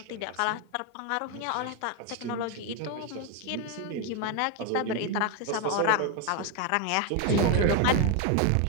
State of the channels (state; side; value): different; both; correlation 0.01